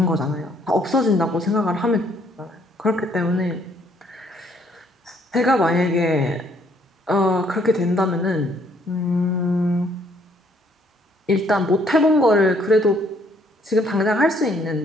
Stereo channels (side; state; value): both; normal; correlation 0.66